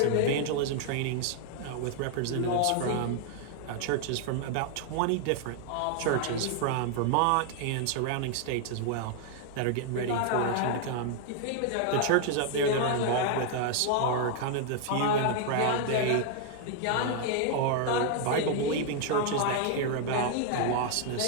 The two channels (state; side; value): different; both; correlation 0.00